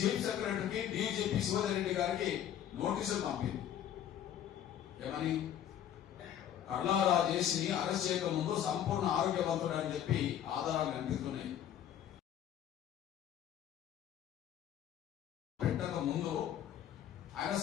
డీజీపీ శివధర్ రెడ్డి గారికి నోటీసులు పంపింది. ఏమని? కర్లా రాజేష్ని అరెస్ట్ చేయక ముందు సంపూర్ణ ఆరోగ్యవంతుడు అని చెప్పి ఆధారాలు కనిపిస్తున్నాయి. పెట్టక ముందు ఆయన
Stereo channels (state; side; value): quieter; right; 10.4 dB